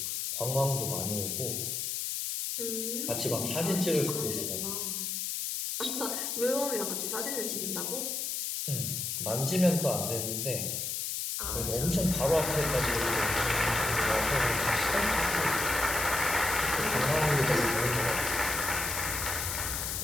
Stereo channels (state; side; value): noise; left; hiss, 2 dB below the sound